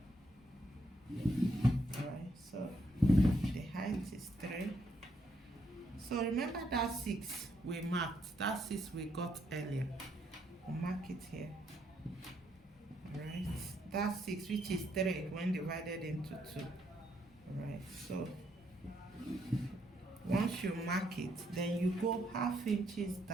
All right, so the height is 3. So remember that 6 we marked, that 6 we got earlier. We'll mark it here. All right, that 6, which is 3 when divided into 2. All right, so once you mark it, then you go 1/2 inches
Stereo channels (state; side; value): normal; both; correlation 0.75